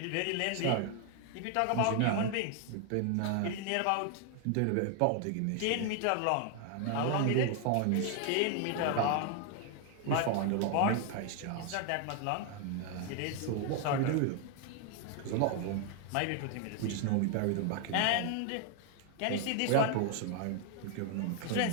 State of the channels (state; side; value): different; both; correlation 0.00